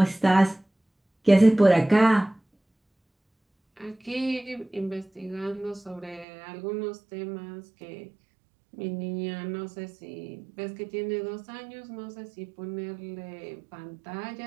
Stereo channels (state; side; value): drops out; left; at 6.2 s